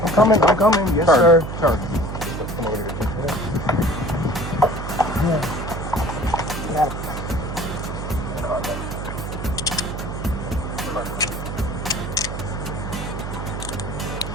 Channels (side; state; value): right; noise; hum, 6 dB below the sound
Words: coming. Yes, Turn. sir. Turn. Come over here.